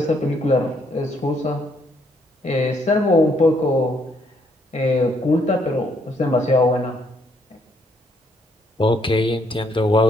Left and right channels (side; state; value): both; normal; correlation 0.70